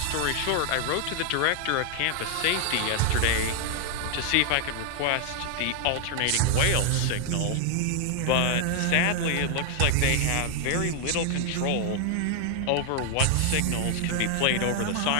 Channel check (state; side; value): different; both; correlation 0.00